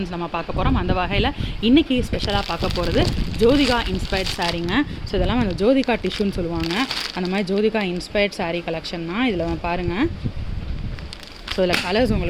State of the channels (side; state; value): both; identical; correlation 1.00